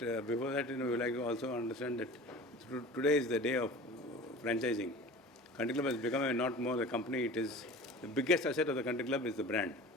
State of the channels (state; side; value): normal; both; correlation 0.39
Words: before that, we like to also understand that today is the day of franchising. Country Club has become not more a company. It is the biggest asset of the Country Club is the brand.